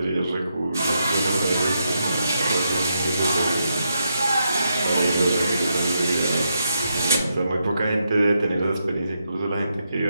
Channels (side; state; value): both; inverted; correlation -0.81